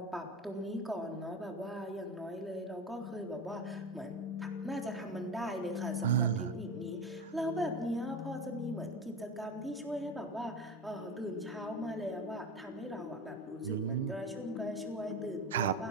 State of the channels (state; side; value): normal; both; correlation 0.26